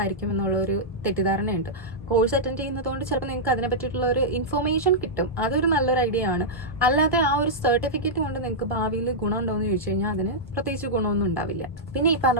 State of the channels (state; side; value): normal; both; correlation -0.10